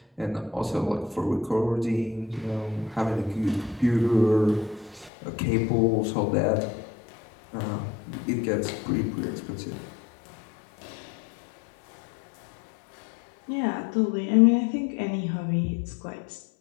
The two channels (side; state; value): right; drops out; at 5.1 s